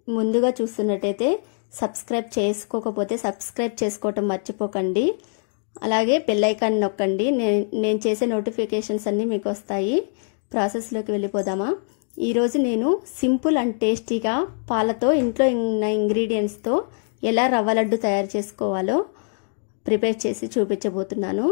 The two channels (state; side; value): silent; right; 57 dB below the other